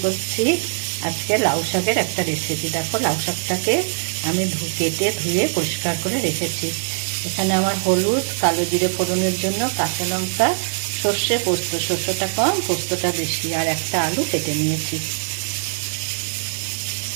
করছি আজকে লাউ শাকের একটা রেসিপি। দেখো, লাউ শাকটাকে আমি কেটে ধুয়ে পরিষ্কার করে রেখেছি। এখানে আমার হলুদ, কালো জিরে ফোড়নের জন্য, কাঁচা লঙ্কা, সর্ষে, পোস্ত, সর্ষেটা কম পোস্তটা বেশি, আর একটা আলু কেটে নিয়েছি।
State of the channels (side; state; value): left; silent; digital silence